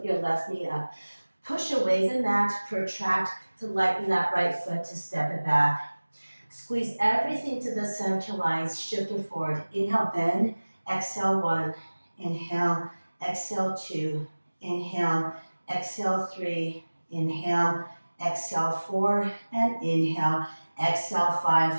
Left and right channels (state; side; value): inverted; both; correlation -1.00